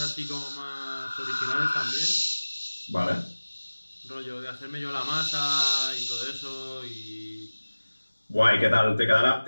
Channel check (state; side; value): inverted; both; correlation -1.00